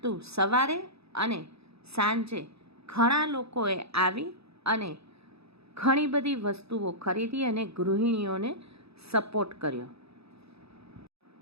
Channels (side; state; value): left; late; 0.78 ms